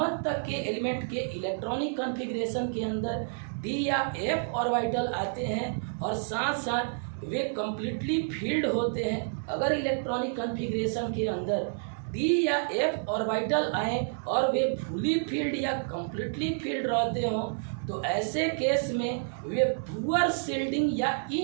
तक के एलिमेंट के इलेक्ट्रॉनिक कॉन्फ़िगरेशन के अंदर डी या एफ ऑर्बिटल आते हैं और साथ साथ वे कम्प्लीटली फील्ड होते हैं। अगर इलेक्ट्रॉनिक कॉन्फ़िगरेशन के अंदर डी या एफ ऑर्बिटल आए और वे फुली फील्ड या कम्प्लीटली फील्ड रहते हों तो ऐसे केस में वे पुअर शील्डिंग या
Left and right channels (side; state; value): left; silent; 58 dB below the other